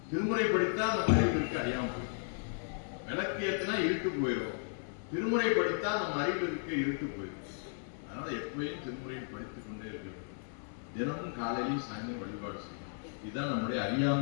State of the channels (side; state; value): right; silent; 55 dB below the other